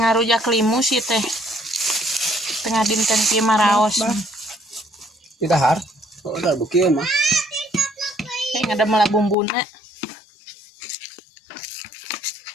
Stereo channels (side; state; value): right; drops out; at 9.3 s